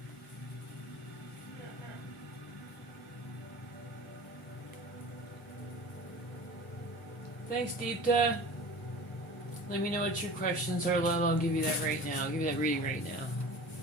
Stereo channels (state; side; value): normal; both; correlation 0.38